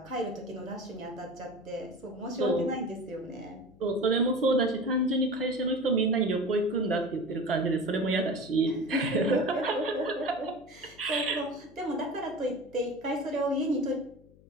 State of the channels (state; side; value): noise; left; hum, 25 dB below the sound